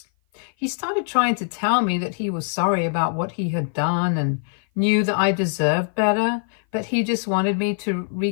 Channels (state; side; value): silent; right; 56 dB below the other